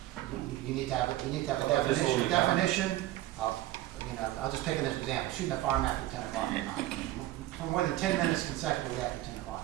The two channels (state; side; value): quieter; left; 15.4 dB